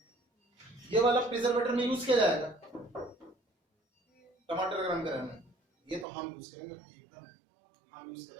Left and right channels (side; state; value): left; drops out; at 6.1 s